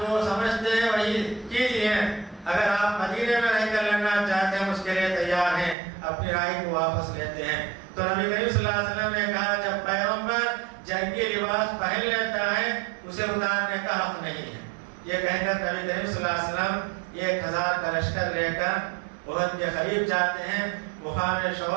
سمجھتے ہیں وہی کیجیے، اگر آپ مدینے میں رہ کر لڑنا چاہتے ہیں اس کے لیے تیار ہیں، اپنی رائے کو واپس لیتے ہیں۔ تو نبی کریم صلی اللہ علیہ وسلم نے کہا جب پیغمبر جنگی لباس پہن لیتا ہے اسے اتارنے کا حق نہیں ہے۔ یہ کہہ کر نبی کریم صلی اللہ علیہ وسلم 1000 کا لشکر لے کر احد کے قریب جاتے ہیں، مقام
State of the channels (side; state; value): left; drops out; at 5.8 s